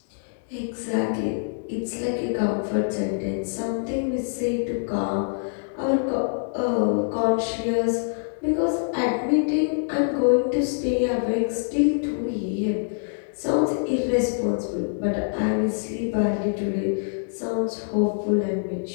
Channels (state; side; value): silent; right; digital silence